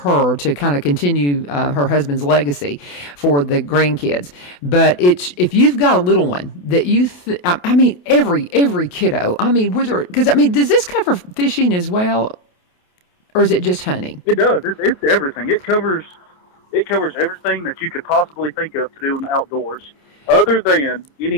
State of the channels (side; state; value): right; late; 28 ms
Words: to kind of continue her husband's legacy for the grandkids. But if you've got a little one that you, every kiddo, does this cover fishing as well? Or is it just hunting? It does. It's everything. It covers everything that you could possibly think of to do in the outdoors, other than